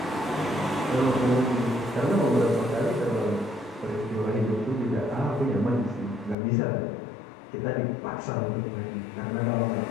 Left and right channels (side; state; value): right; drops out; at 6.4 s